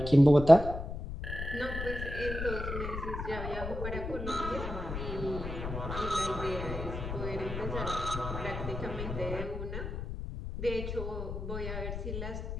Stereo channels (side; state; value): left; noise; rumble, 6 dB below the sound